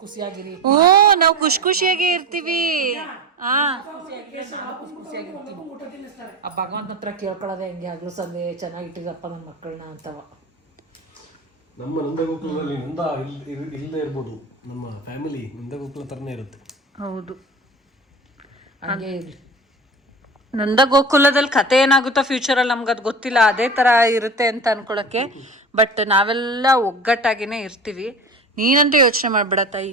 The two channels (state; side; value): normal; both; correlation 0.32